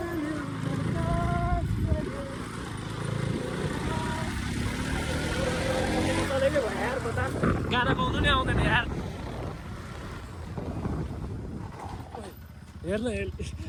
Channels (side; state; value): both; identical; correlation 1.00